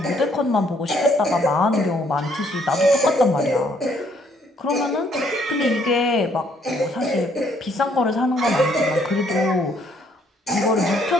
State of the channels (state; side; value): normal; both; correlation 0.67